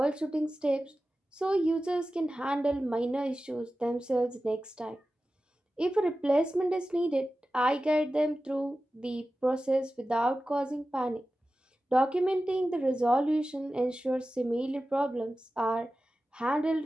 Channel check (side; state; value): both; normal; correlation 0.94